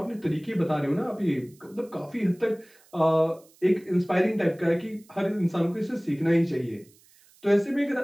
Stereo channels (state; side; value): noise; right; hiss, 29 dB below the sound